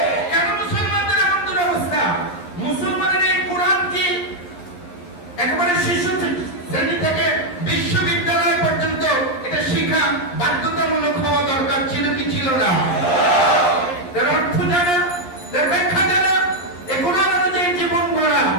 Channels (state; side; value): late; right; 11 ms